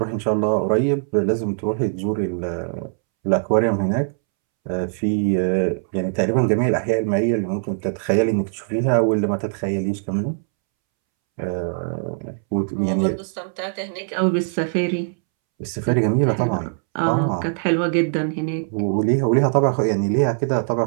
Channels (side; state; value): left; silent; 65 dB below the other